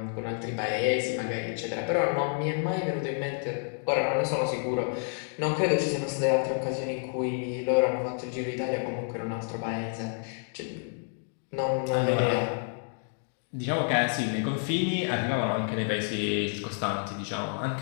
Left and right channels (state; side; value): silent; right; 58 dB below the other